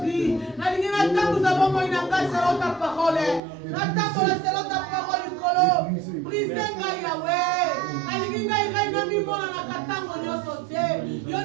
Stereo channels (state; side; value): drops out; left; at 3.4 s